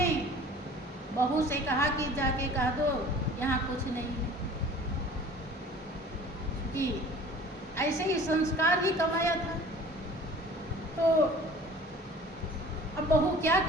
बहू से कहा कि जाके कह दो यहाँ कुछ नहीं है, कि ऐसे ही संस्कार ही कमाया था। तो अब बहू क्या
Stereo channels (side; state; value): both; normal; correlation 0.46